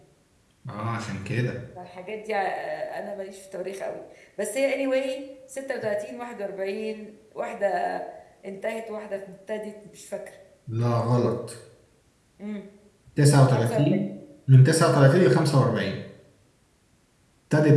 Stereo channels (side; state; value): both; identical; correlation 1.00